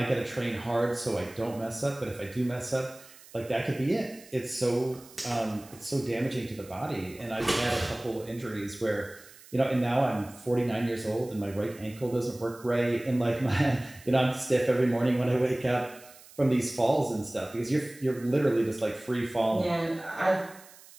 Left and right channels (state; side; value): noise; right; hiss, 22 dB below the sound